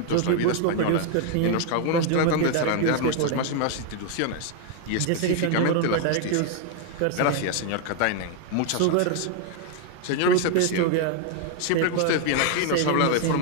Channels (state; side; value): different; both; correlation 0.01